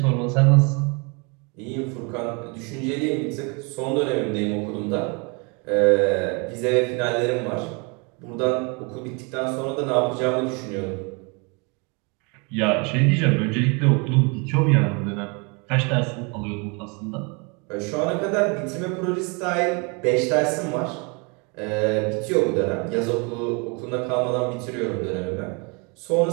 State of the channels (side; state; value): left; quieter; 31.9 dB